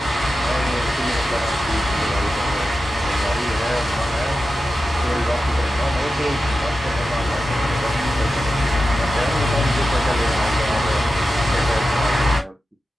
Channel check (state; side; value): normal; both; correlation 0.91